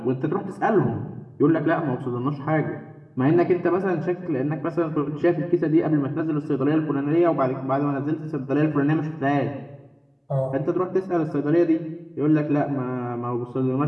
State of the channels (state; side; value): identical; both; correlation 1.00